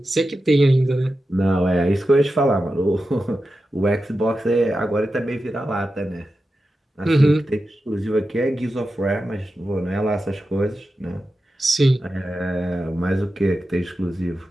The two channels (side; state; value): both; normal; correlation 0.91